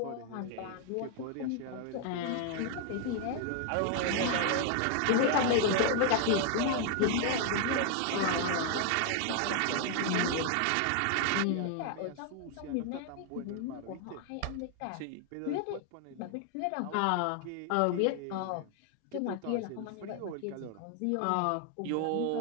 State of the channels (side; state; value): both; different; correlation 0.00